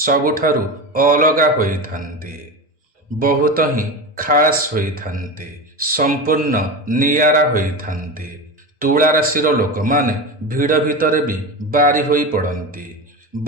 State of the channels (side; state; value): both; normal; correlation 0.23